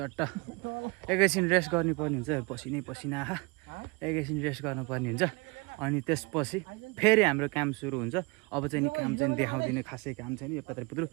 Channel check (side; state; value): left; quieter; 27.5 dB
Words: एकैछिन रेस्ट गर्नुपर्ने हुन्छ। पसिना आहा एकैछिन रेस्ट गर्नुपर्ने हुन्छ। अनि त्यसपछि फेरि हाम्रो काम सुरु हुन्छ। अब चाहिँ नि काम चाहिँ देखाउँदिनँ, खासै काम छैन। यो पत्रपुत्रु